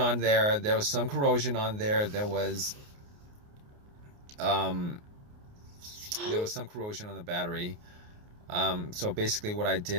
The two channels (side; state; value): left; late; 29 ms